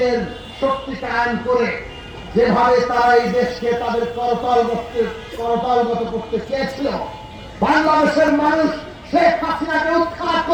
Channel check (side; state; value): both; identical; correlation 1.00